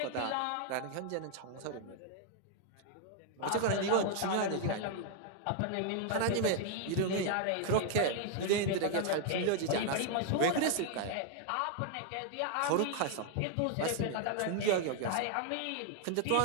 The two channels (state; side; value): different; both; correlation 0.00